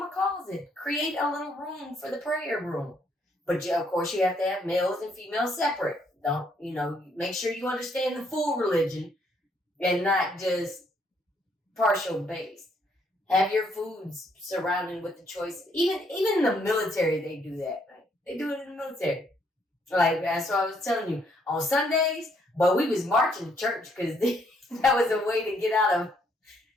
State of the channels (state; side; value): normal; both; correlation 0.70